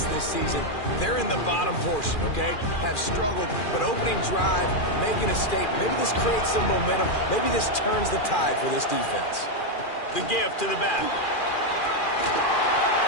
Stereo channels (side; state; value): right; late; 2.4 ms